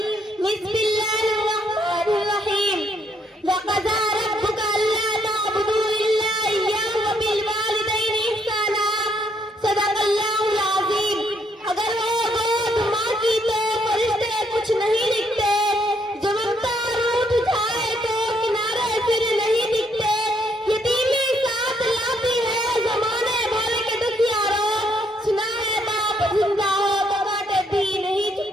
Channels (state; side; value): normal; both; correlation 0.71